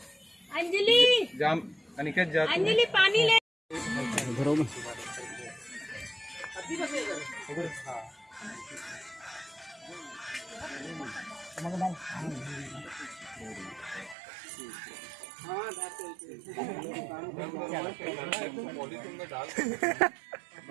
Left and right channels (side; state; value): left; drops out; at 14.2 s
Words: अंजलि, जाम अनिकेत जाते अंजलि पानी ले। घरों में